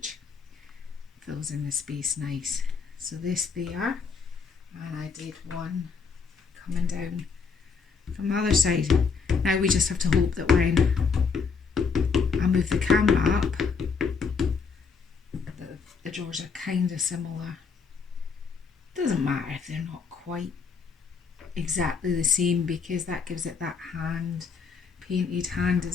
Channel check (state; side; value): quieter; right; 5.4 dB